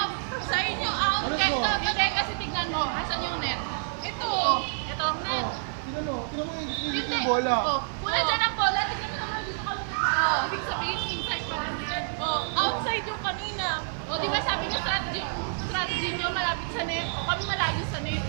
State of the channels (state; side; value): silent; left; digital silence